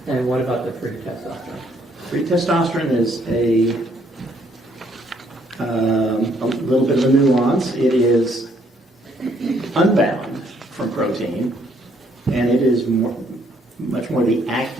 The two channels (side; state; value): both; normal; correlation 0.68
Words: And what about the pre-testosterone? Free testosterone is a little bit of a nuance. It is unbound from protein, and it is much more the